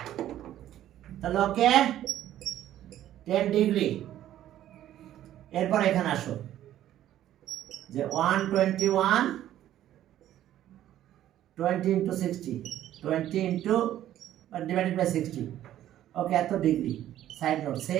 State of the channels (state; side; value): quieter; left; 12.4 dB